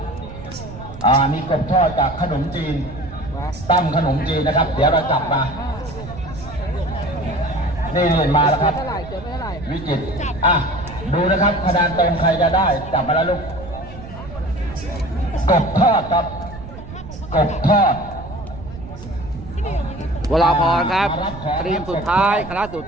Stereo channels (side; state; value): right; noise; rumble, 13 dB below the sound